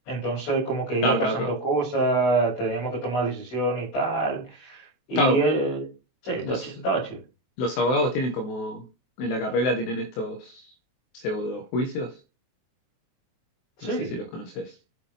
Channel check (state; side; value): late; right; 23 ms